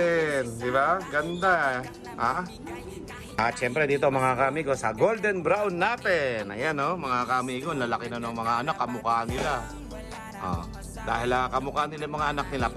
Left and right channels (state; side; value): identical; both; correlation 1.00